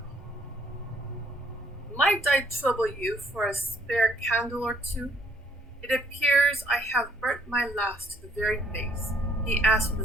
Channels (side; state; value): both; normal; correlation 0.65